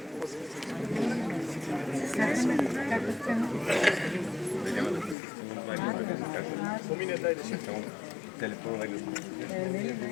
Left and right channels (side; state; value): right; drops out; at 5.2 s